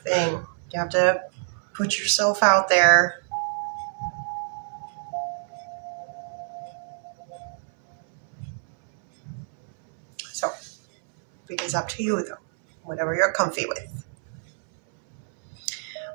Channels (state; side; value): silent; left; 61 dB below the other